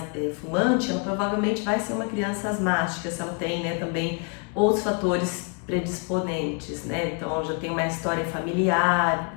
fumante, ela provavelmente vai ser uma criança asmática, se ela tem, né, também outros fatores predisponentes, né? Então, já tem uma história familiar,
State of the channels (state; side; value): quieter; right; 35.5 dB